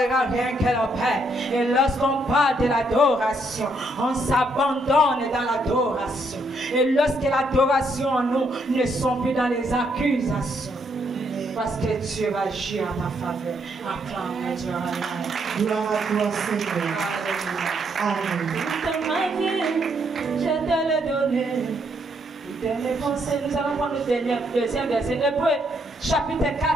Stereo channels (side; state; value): both; normal; correlation 0.74